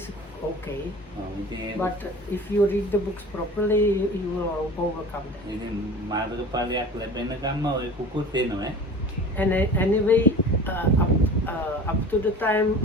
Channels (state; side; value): normal; both; correlation 0.39